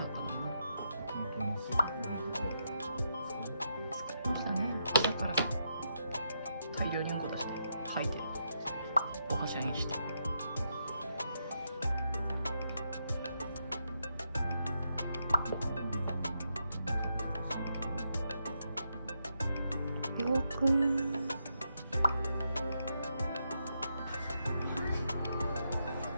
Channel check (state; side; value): inverted; both; correlation -0.82